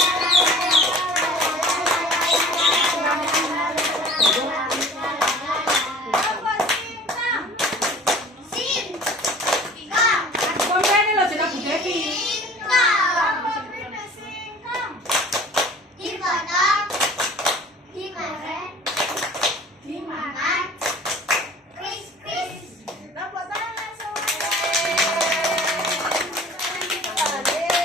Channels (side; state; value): both; normal; correlation 0.46